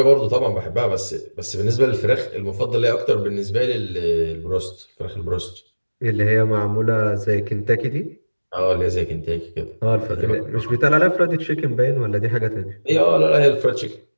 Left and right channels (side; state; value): both; inverted; correlation -1.00